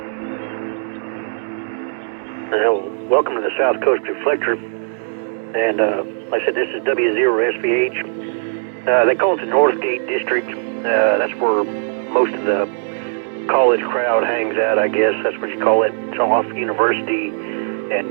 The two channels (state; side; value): silent; left; digital silence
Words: Welcome to the South Coast Reflector, and like I said, this is W0SVH. They call it the Northgate District. That's where most of the college crowd hangs out, I guess. That's what you call it. It's off University and